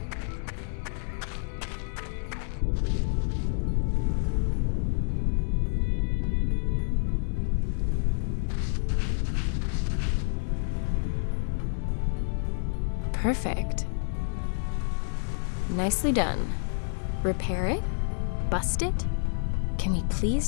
Perfect. Nicely done. Repair it? Bust it? Can we please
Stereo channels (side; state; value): right; silent; digital silence